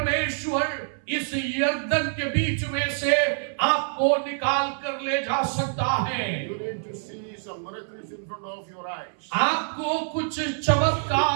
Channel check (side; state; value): left; silent; 61 dB below the other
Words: इस यर्दन के बीच में से आपको निकाल कर ले जा सकता है। You need to see some miracles in front of your eyes. आपको कुछ